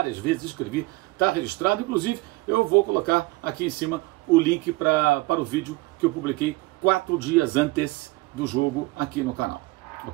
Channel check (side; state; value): left; quieter; 21.5 dB